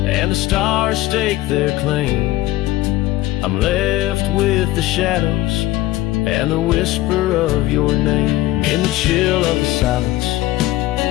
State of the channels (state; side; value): quieter; right; 16.3 dB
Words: the stars stake their claim, I'm left with the shadows and the whisper of your name. In the chill of the silence,